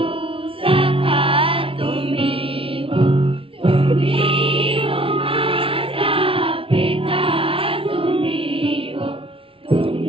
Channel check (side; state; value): left; late; 0.26 ms